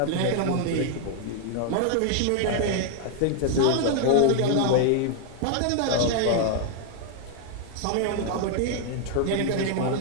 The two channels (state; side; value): different; both; correlation 0.00